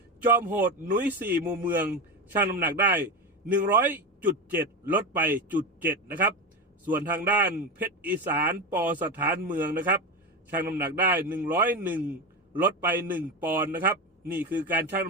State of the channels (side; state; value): both; normal; correlation 0.19